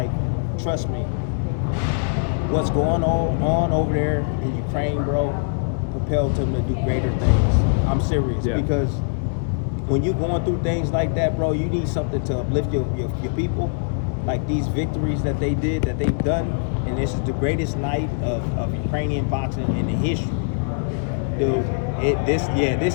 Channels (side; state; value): right; silent; digital silence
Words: trust me, what's going on over there in Ukraine, bro, propelled him to do greater things. I'm serious, because when you're going through things like that, bro, you need something to uplift your people. Like these victories that they've done, and this is the greatest night of Ukrainian boxing in the history. Dude, this